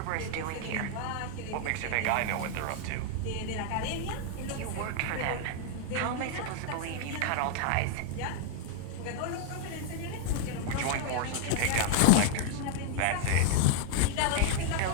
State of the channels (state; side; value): different; both; correlation 0.00